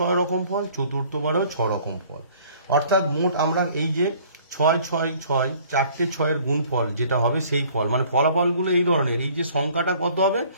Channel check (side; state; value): both; inverted; correlation -0.54